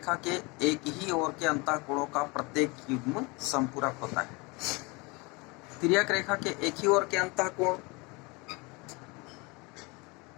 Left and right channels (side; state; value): right; quieter; 27.0 dB